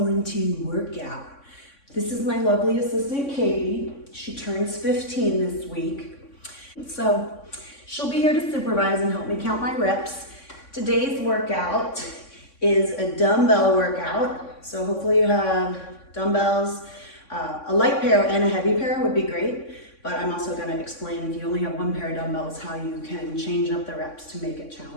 workout. This is my lovely assistant Katie. She turns 15 this week. So she'll be here to supervise and help me count my reps. Today's workout is a dumbbell workout. So hopefully you have dumbbells. A light pair and a heavy pair would be great. But I'm also going to explain if you only have one pair of dumbbells how you can change up the reps to make it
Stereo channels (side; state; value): right; late; 3.6 ms